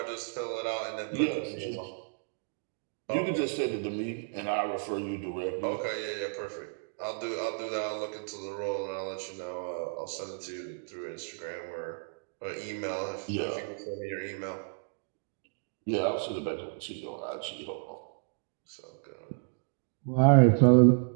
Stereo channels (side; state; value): left; silent; digital silence